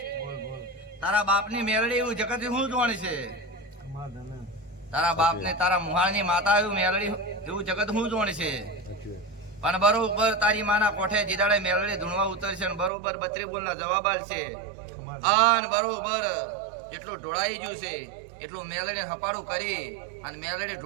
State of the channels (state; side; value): drops out; left; at 12.9 s